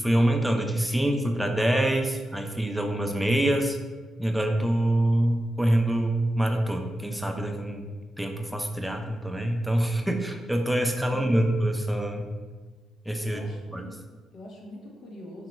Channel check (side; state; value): both; normal; correlation 0.92